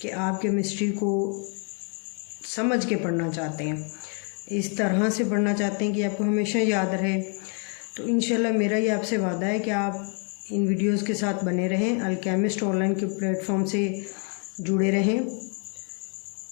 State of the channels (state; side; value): quieter; right; 39.2 dB